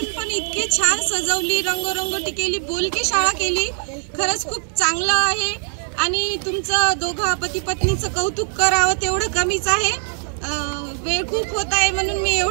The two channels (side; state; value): left; silent; digital silence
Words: पण इतकी छान सजवली, रंगरंगोटी केली, बोलकी शाळा केली. खरंच खूप चांगलं आहे आणि तुमचं दोघा पती पत्नीचं कौतुक करावं तेवढं कमीच आहे. वेळ खूप होत आहे म्हणून मी